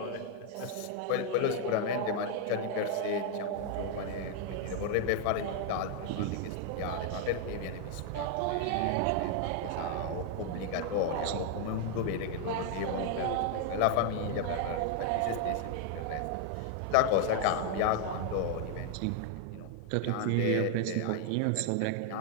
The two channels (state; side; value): different; both; correlation 0.00